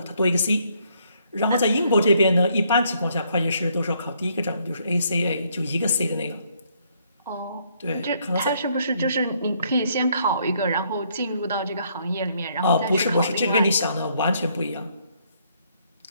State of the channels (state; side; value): inverted; both; correlation -0.69